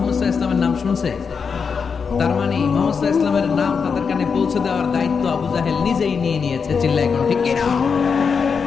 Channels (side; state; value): right; quieter; 5.8 dB